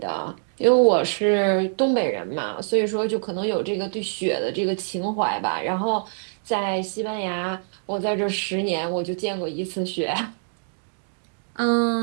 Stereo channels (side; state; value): left; silent; digital silence